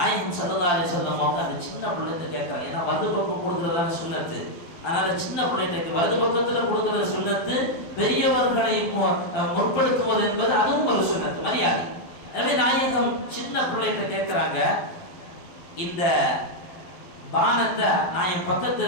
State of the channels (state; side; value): late; right; 12 ms